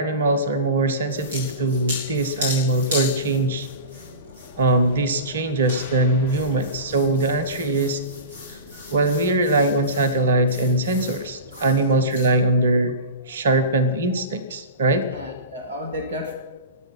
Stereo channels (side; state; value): both; inverted; correlation -0.30